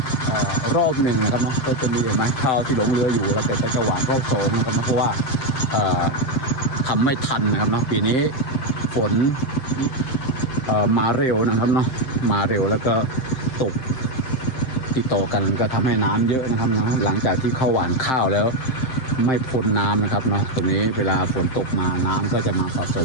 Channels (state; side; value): late; right; 7.6 ms